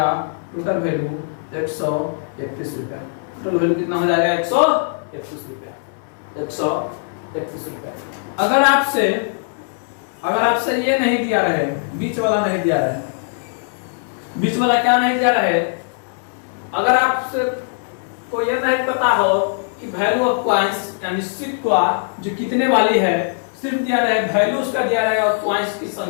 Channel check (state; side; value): silent; right; 66 dB below the other